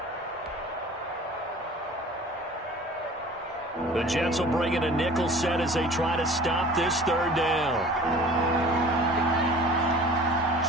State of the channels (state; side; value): normal; both; correlation 0.45